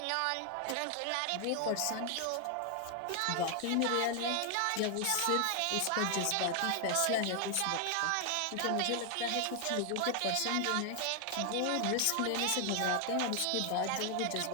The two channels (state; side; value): different; both; correlation 0.00